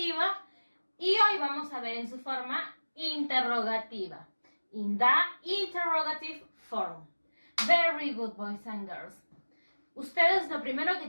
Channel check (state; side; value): inverted; both; correlation -1.00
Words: y hoy vamos a ver en su forma interrogativa. In the interrogative form. Very good, boys and girls. Ustedes lo primero que